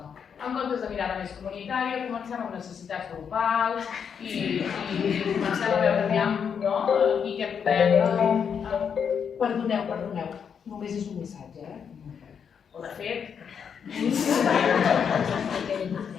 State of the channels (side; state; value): right; quieter; 7.2 dB